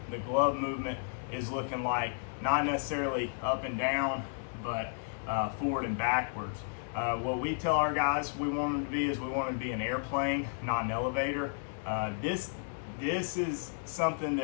glove movement is looking like, not necessarily up and down, but forward and backwards. What we tell our guys we want them to be is we want them to be an airplane, not an elevator. This is something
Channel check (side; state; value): right; silent; digital silence